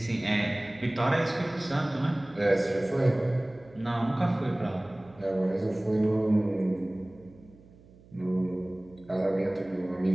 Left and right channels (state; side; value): noise; right; hum, 25 dB below the sound